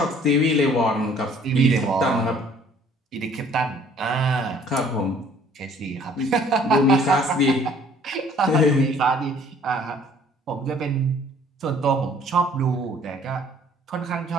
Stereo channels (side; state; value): both; normal; correlation 0.56